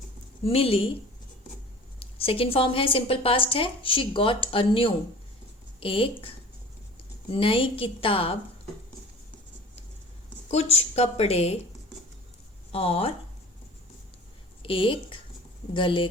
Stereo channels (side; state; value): both; normal; correlation 0.43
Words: मिली, सेकेंड फॉर्म है, सिंपल पास्ट है, शी गॉट अ न्यू, एक नई किताब, कुछ कपड़े और एक गले